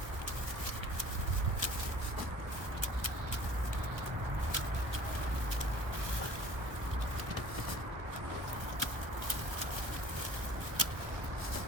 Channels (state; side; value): late; left; 1.1 ms